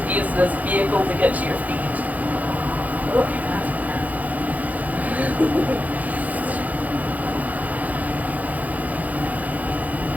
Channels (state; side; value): late; left; 0.078 ms